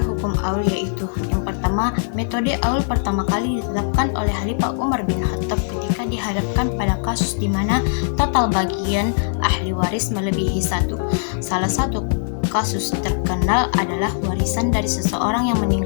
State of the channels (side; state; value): right; silent; 59 dB below the other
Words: hukum aul yaitu yang pertama, metode aul pertama kali ditetapkan oleh Khalifah Umar bin Khattab ketika dihadapkan pada kasus di mana total bagian ahli waris melebihi satu. Salah satu kasus terkenal adalah warisan dari seseorang yang